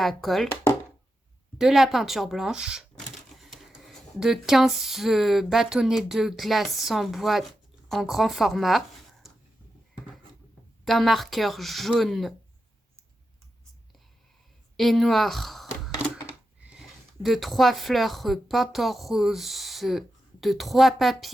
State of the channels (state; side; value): normal; both; correlation 0.89